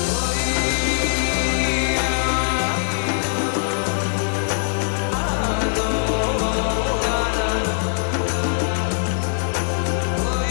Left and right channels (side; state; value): right; silent; digital silence